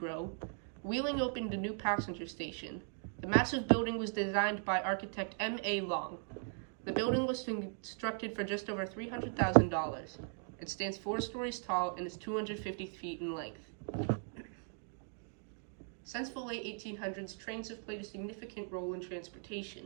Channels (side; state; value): left; silent; 52 dB below the other